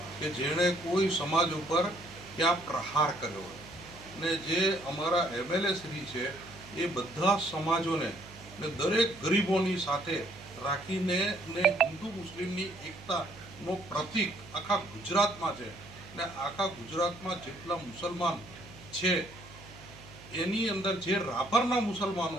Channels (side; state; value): right; noise; hum, 19 dB below the sound